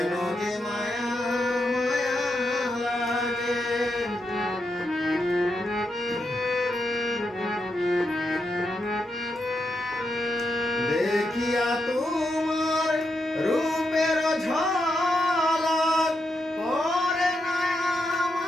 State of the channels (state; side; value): normal; both; correlation 0.83